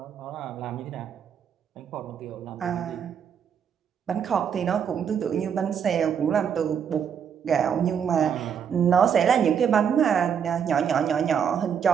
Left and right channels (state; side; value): quieter; left; 7.7 dB